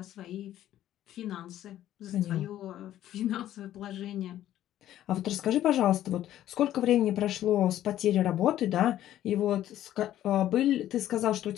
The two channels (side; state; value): right; quieter; 12.6 dB